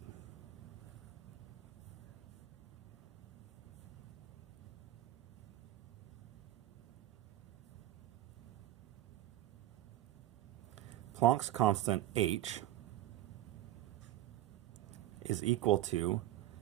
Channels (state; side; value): quieter; left; 14.3 dB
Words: Planck's constant, h, is equal to